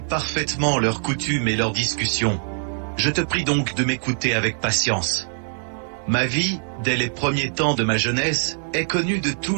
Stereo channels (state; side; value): silent; left; digital silence